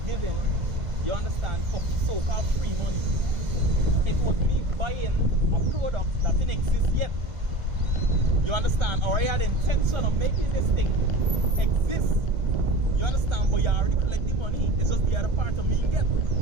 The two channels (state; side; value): late; left; 1.5 ms